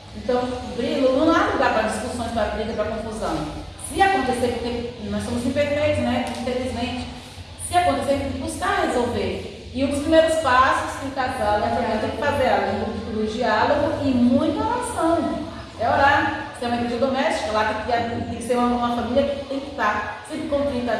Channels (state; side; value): identical; both; correlation 1.00